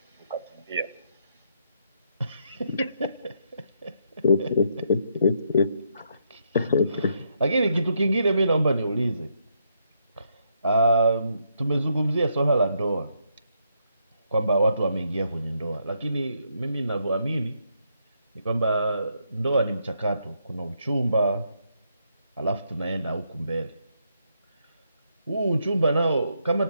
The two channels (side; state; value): both; inverted; correlation -0.76